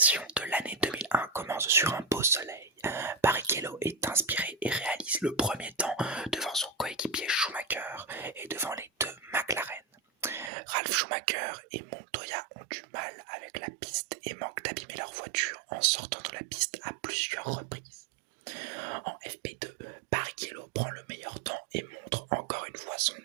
de l'année 2001 commence sur un beau soleil. Barrichello est inspiré et réalise le premier temps devant son coéquipier Schumacher et devant les deux McLaren. Ralf Schumacher et Montoya ont du mal avec la piste et manquent d'abîmer leur voiture en sortant de la piste à plusieurs reprises. En FP2, Barrichello prend le meilleur temps et montre encore une fois son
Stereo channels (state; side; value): drops out; left; at 10.5 s